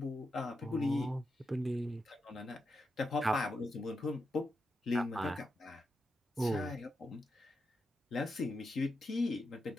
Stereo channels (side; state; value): both; normal; correlation 0.87